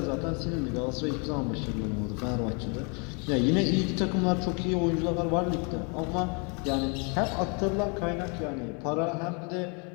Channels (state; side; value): quieter; right; 34.8 dB